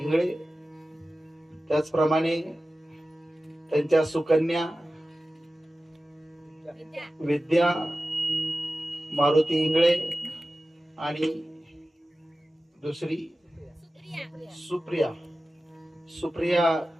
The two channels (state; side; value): normal; both; correlation 0.95